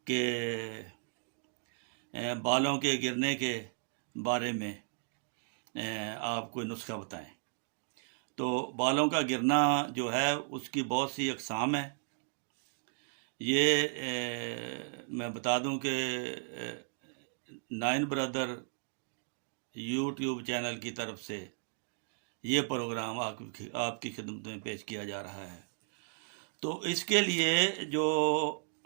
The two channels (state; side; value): silent; left; digital silence